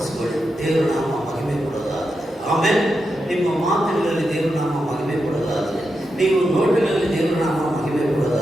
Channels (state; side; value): normal; both; correlation 0.87